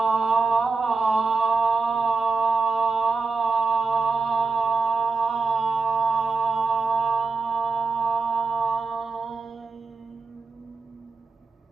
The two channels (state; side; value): quieter; left; 4.3 dB